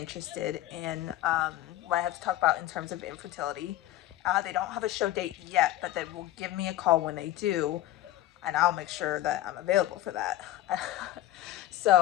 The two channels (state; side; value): quieter; right; 14.1 dB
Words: in what I have to talk about in terms of infertility. They don't have a show date yet, but they will give me a call when they do, and I'll make sure that I'm available for that.